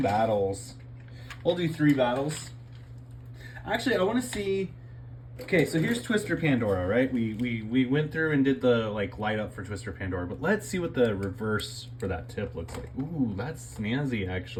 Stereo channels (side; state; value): both; identical; correlation 1.00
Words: battles. We'll do 3 battles. Actually, I want to see... Okay, so here's Twister Pandora, right? We went through and did the light up for Twister Pandora, but let's see what the reverse for that tip looks like. Ooh, that's snazzy,